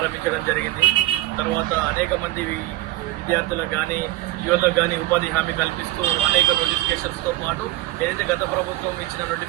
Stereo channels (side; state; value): left; quieter; 16.8 dB